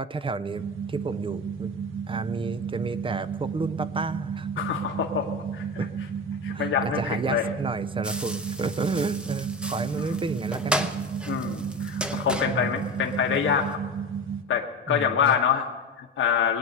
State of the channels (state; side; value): normal; both; correlation 0.26